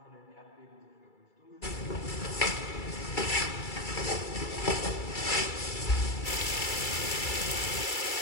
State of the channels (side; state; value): right; late; 2.3 ms